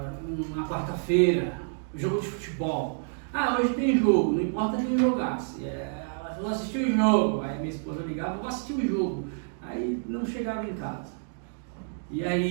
uma quarta-feira, jogo de futebol. Ah, hoje tem jogo, não importa quem jogasse. Ela falou, assistir o jogo. Aí minha esposa ligava, vou assistir o jogo. Aí não chegava em casa. E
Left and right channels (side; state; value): left; silent; digital silence